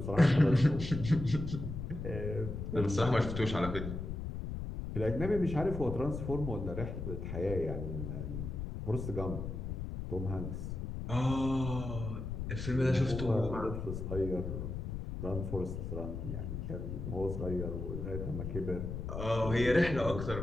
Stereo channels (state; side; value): noise; left; rumble, 5 dB below the sound